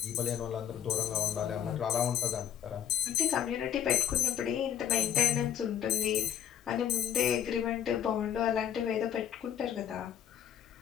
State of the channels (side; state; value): right; quieter; 9.5 dB